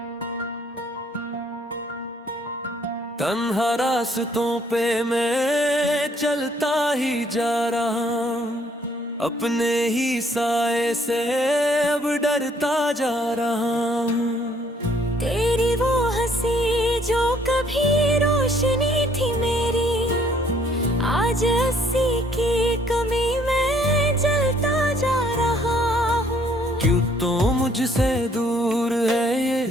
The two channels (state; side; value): normal; both; correlation 0.64